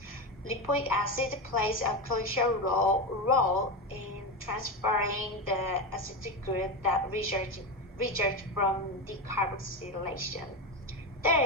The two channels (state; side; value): normal; both; correlation 0.16